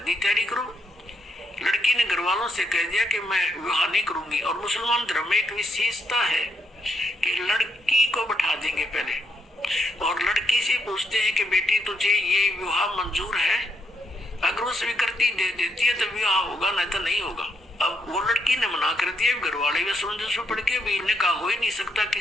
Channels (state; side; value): normal; both; correlation 0.76